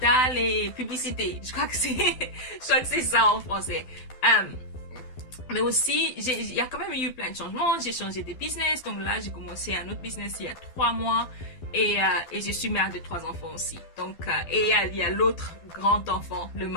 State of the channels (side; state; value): right; late; 12 ms